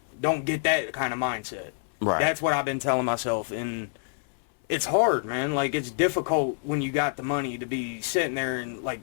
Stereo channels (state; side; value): silent; right; 59 dB below the other